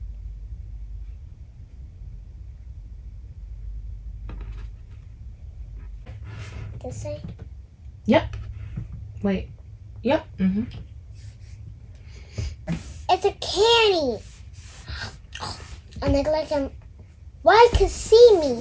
This side? Yep. Wait. Yep. It's a candy. And look like I'm. Why could see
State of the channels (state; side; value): identical; both; correlation 1.00